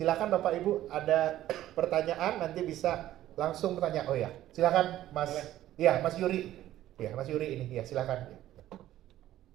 Bapak Ibu ada pertanyaan nanti bisa langsung bertanya. Oh ya, silakan Mas. Iya, Mas Yuri. Iya, Mas Yuri ini. Ya, silakan. Ya.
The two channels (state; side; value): quieter; left; 13.6 dB